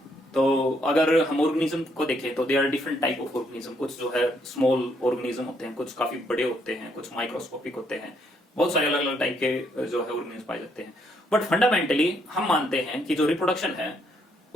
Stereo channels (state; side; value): normal; both; correlation 0.72